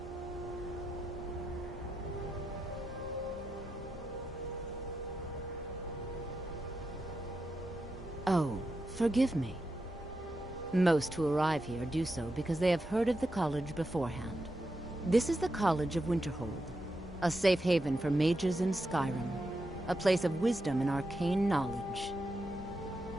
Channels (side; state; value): both; normal; correlation 0.87